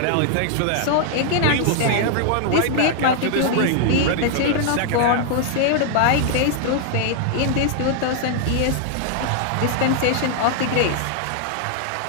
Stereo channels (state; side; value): different; both; correlation 0.00